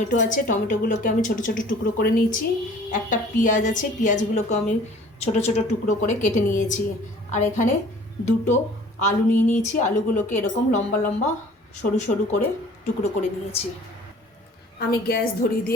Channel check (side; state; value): both; normal; correlation 0.50